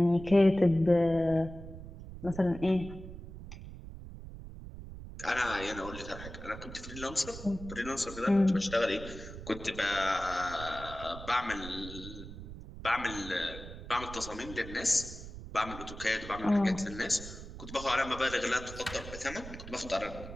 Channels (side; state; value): right; noise; rumble, 12 dB below the sound